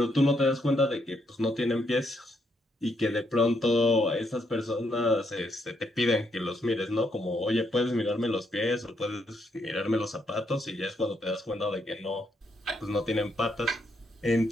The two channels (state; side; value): normal; both; correlation 0.76